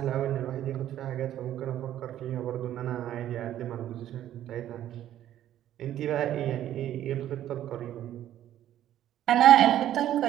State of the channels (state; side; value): quieter; left; 12.0 dB